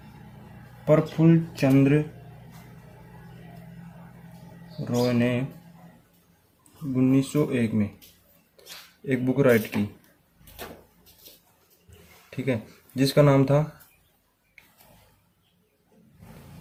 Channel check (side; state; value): both; identical; correlation 1.00